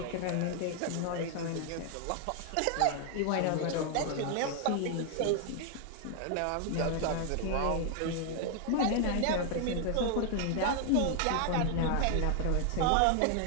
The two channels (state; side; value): different; both; correlation 0.00